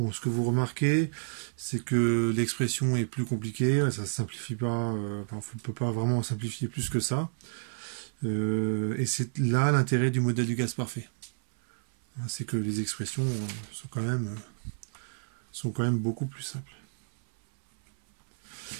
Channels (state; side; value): silent; left; 58 dB below the other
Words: ce que vous remarquez, c'est que l'expression est plus compliquée, ça ne simplifie pas, on ne peut pas vraiment simplifier plus que ça. Et c'est là l'intérêt du modèle du gaz parfait. C'est que les expressions sont quand même beaucoup plus simples.